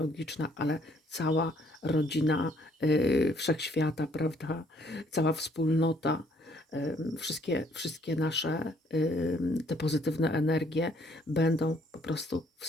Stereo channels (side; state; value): both; normal; correlation 0.64